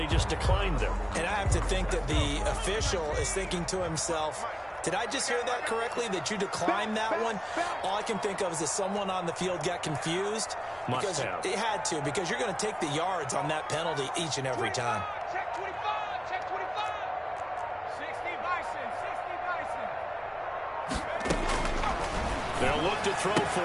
just declined them. And I have to think that the official is thinking to himself, did I just hear that correctly, that you declined that one? All I can think of is that someone on the field got confused. Must have. It had to, because you're going to take the yards on that penalty each and every time. Check 25. Check 25. 60 Bison. 60 Bison. They'll look to throw for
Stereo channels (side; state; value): both; identical; correlation 1.00